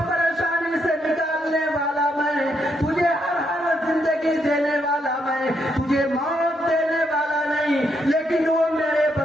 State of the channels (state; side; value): normal; both; correlation 0.77